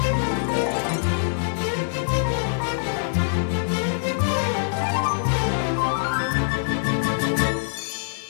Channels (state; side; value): silent; right; 63 dB below the other